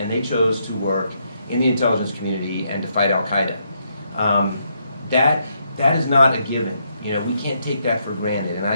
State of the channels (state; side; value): inverted; both; correlation -0.77